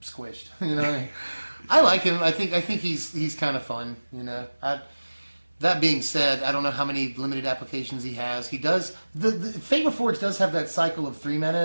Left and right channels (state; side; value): inverted; both; correlation -1.00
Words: squished. You know, I like him. I think he's kind of fun. You know, that being said, I don't know how many limited applications he has. He does the Fate Reforged does have that cycle of 3